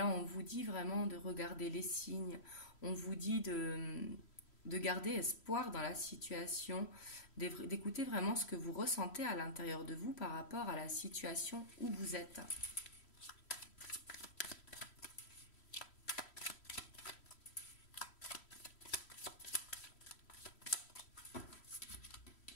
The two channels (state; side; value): late; right; 3.1 ms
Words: on vous dit vraiment de regarder les signes. On vous dit de garder espoir dans la situation, d'écouter vraiment ce que vous ressentez à l'intérieur de vous par rapport à la situation où vous êtes.